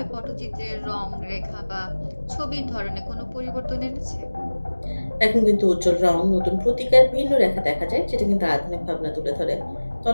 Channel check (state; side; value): inverted; both; correlation -1.00